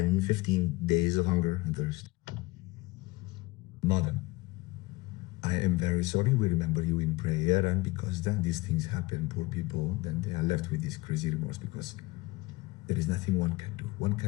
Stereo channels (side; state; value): right; quieter; 21.6 dB